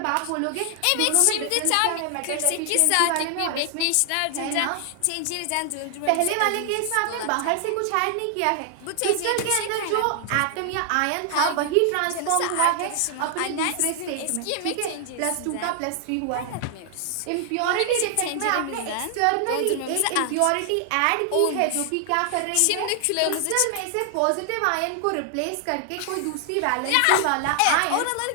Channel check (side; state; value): both; different; correlation 0.00